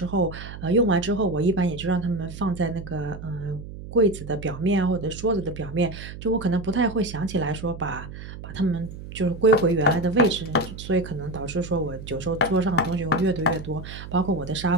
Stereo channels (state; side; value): noise; right; hum, 12 dB below the sound